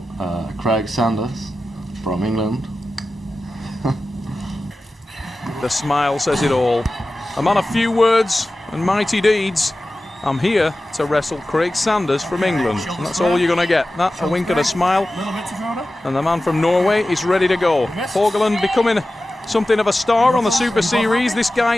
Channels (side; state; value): both; normal; correlation 0.95